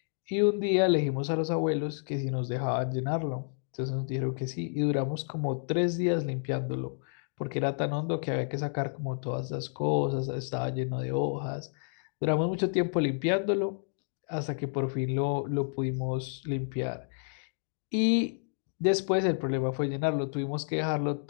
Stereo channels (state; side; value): silent; right; digital silence